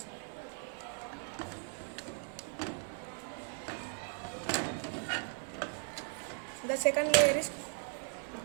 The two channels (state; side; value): silent; left; 53 dB below the other